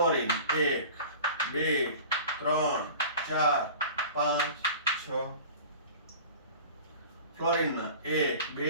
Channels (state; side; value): inverted; both; correlation -0.39